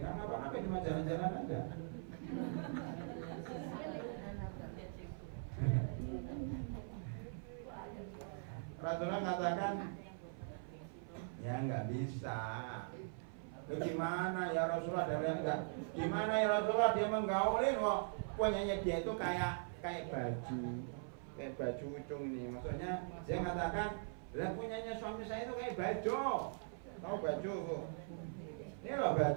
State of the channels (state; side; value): silent; left; 50 dB below the other